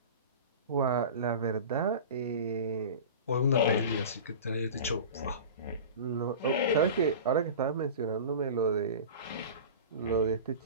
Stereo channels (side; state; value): both; inverted; correlation -0.33